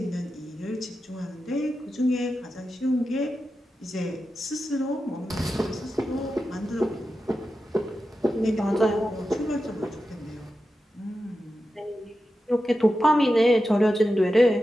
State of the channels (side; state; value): both; normal; correlation 0.91